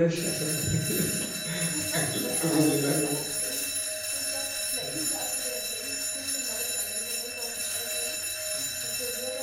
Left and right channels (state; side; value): identical; both; correlation 1.00